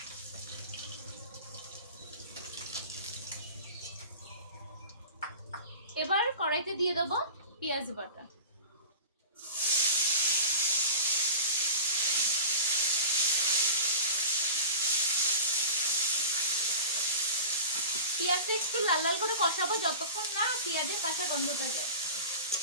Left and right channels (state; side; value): inverted; both; correlation -0.34